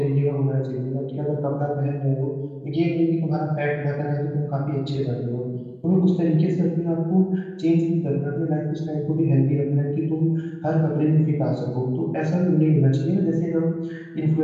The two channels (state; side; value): identical; both; correlation 1.00